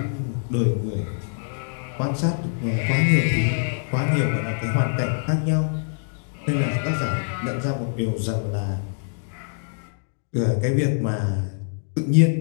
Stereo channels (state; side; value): silent; right; 62 dB below the other